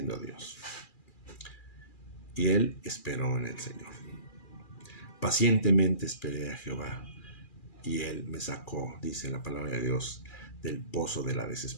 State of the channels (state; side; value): late; right; 2.4 ms